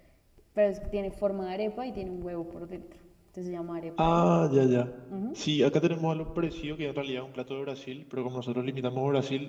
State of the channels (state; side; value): identical; both; correlation 1.00